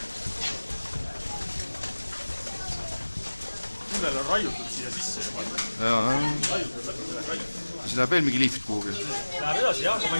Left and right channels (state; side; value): inverted; both; correlation -1.00